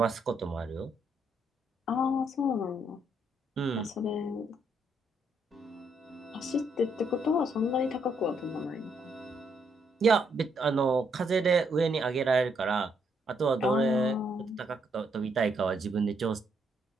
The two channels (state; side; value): normal; both; correlation 0.74